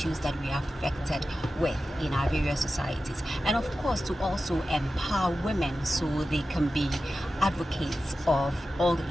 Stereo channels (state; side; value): normal; both; correlation 0.93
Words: that we are affected with in our various societies, and of course to also empower women so they can be advocates of all